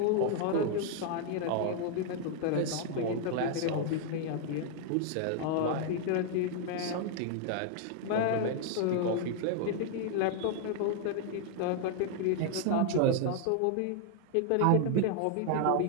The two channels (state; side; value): different; both; correlation 0.00